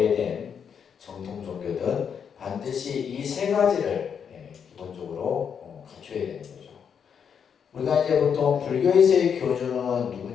정통 종교든 반드시 이 세 가지를 기본적으로 갖춰야 되는 거죠. 우리가 이제 보통 불교에서의 교주는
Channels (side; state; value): right; quieter; 7.3 dB